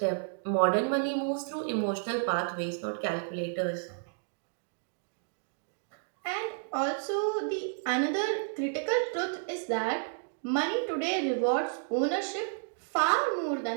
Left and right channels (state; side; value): silent; left; digital silence